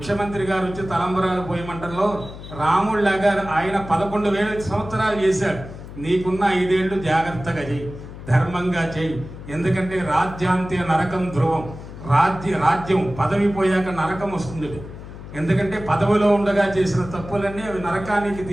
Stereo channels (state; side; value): noise; left; hum, 13 dB below the sound